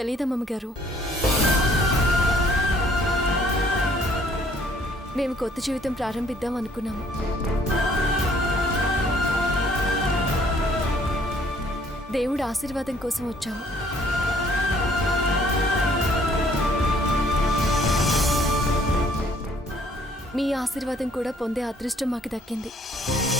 గారు. మేము కొత్త జీవితం ప్రారంభిద్దాం అనుకున్నాము. దేవుడు ఆశీర్వాదం కోసం వచ్చాము. మీ ఆశీర్వాదం కూడా పొందే అదృష్టం మాకు దక్కింది.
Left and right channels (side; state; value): both; normal; correlation 0.61